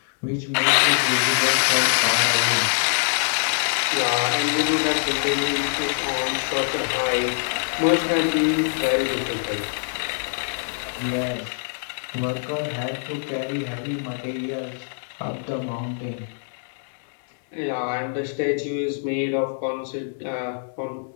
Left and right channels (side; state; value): right; silent; 63 dB below the other